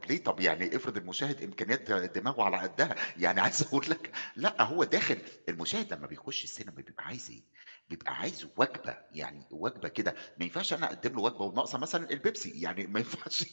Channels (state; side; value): inverted; both; correlation -1.00